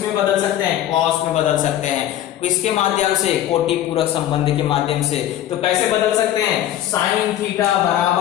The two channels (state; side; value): quieter; right; 12.3 dB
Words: बदल सकते हैं, कॉस में बदल सकते हैं। किसके माध्यम से, कोटि पूरक संबंध के माध्यम से। तो कैसे बदल सकते हैं, साइन थीटा